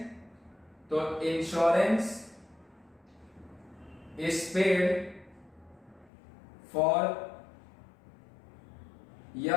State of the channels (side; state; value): right; drops out; at 6.1 s